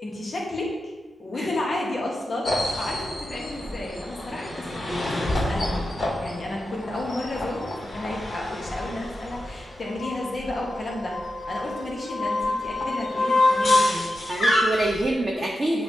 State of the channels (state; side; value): normal; both; correlation 0.90